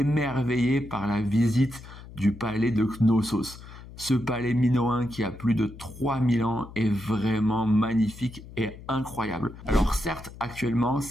par la visite du palais de Knossos. Ce palais minoen qui a plus de 3000 ans est vraiment magnifique et incroyable. Alors certes, actuellement,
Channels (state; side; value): noise; left; hum, 16 dB below the sound